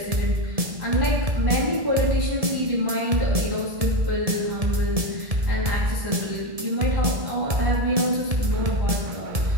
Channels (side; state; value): left; late; 1.7 ms